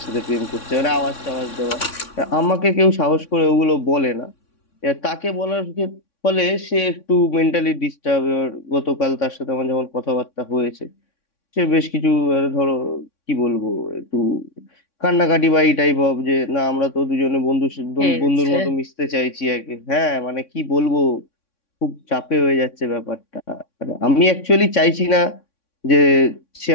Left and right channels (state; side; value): late; right; 3.6 ms